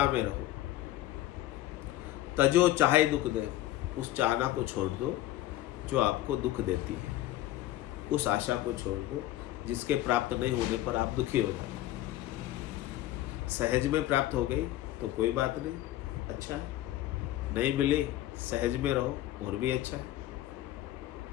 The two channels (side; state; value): right; quieter; 14.9 dB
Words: में रहो। तजो चाहे दुख दे, उस चाहना को छोड़ दो जो आपको दुख देती है, उस आशा को छोड़ दो जिसके प्राप्त नहीं होने पर आप दुखी हो जाते। सहज में प्राप्त हो गई तो कोई बात नहीं, अच्छा है, नहीं मिली सहज में रहो और भी अच्छा है।